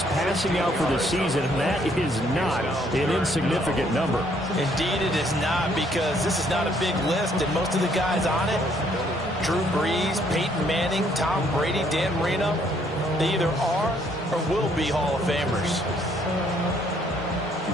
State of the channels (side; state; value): both; normal; correlation 0.67